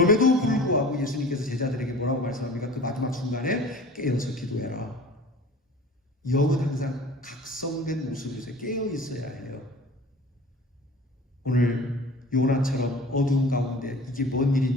불구하고 예수님께서 제자들에게 뭐라고 말씀합니까? 그 마지막 순간에 깨어서 기도해라. 영은 항상 각성된 모습에서 깨어 있어야 해요. 오늘 요나처럼 어두운 가운데 이게 뭔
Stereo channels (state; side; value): normal; both; correlation 0.42